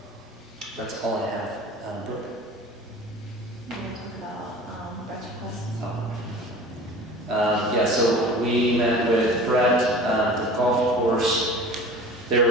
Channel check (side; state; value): both; normal; correlation 0.41